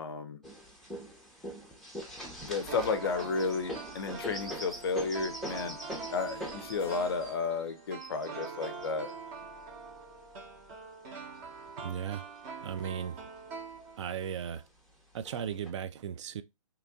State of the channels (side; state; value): both; normal; correlation -0.13